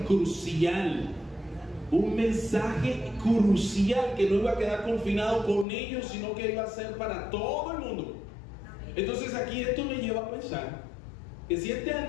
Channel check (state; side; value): drops out; right; at 5.7 s